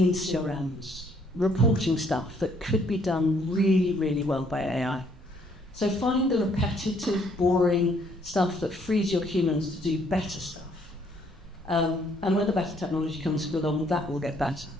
in CRMs, reporting stuff that could be done really, really well by AI. So find the repetitive, boring stuff that frees your humans to do better stuff. And when the better technology comes along, that will get better.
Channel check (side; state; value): both; normal; correlation 0.66